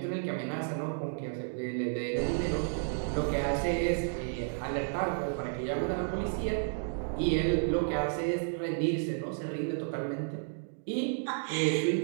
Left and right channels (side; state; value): left; silent; digital silence